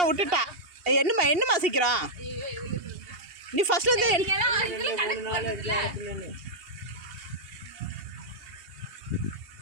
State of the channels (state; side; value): late; left; 2.8 ms